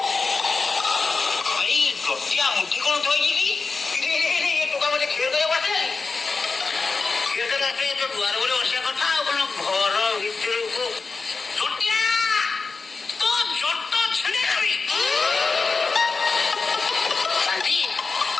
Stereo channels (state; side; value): quieter; right; 4.3 dB